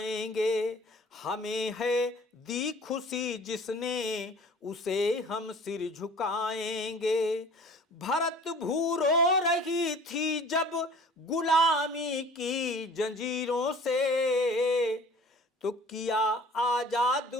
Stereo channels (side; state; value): both; normal; correlation 0.47